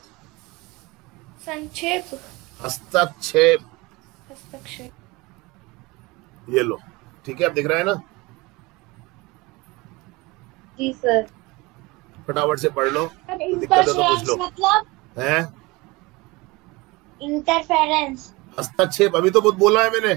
संक्षेप, हस्तक्षेप, हस्तक्षेप, ये लो, ठीक है, आप दिख रहा है ना? जी सर। फटाफट से पढ़ लो, दिक्कत है तो पूछ लो। मतलब हैं? इंटरफेरेंस, हस्तक्षेप, अभी तो बहुत बोला है मैंने।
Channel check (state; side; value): quieter; left; 23.5 dB